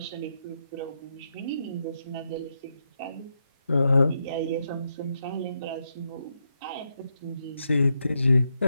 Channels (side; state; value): both; inverted; correlation -0.83